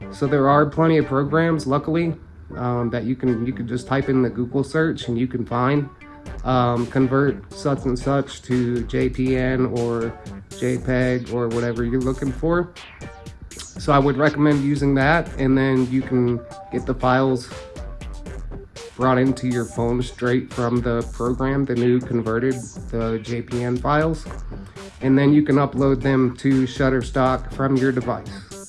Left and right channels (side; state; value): both; identical; correlation 1.00